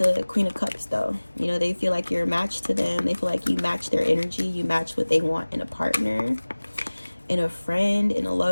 Queen of Cups, though. You know, they feel like you're a match to them. They feel like you match their energy. You match what they want in a partner, in a friend, in a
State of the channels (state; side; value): inverted; both; correlation -1.00